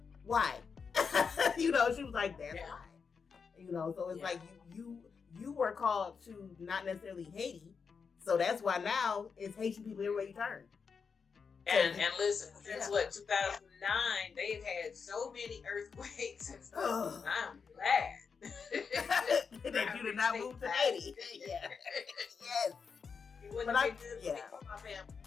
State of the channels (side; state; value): right; quieter; 5.7 dB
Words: why? She was like, that's why. So it's like you were called to not necessarily Haiti. So that's why now it's Haitian people everywhere you turn. And listen, since 2009, they've had so many earthquakes and stuff. I'm glad that you did not move to Haiti. Yeah. Yes. But my family.